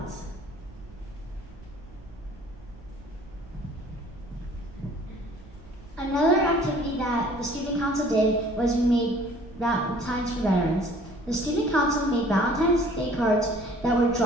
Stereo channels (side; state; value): both; normal; correlation 0.53